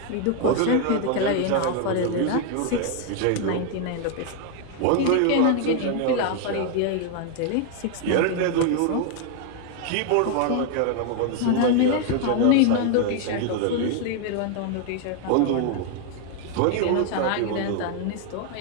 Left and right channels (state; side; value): different; both; correlation 0.00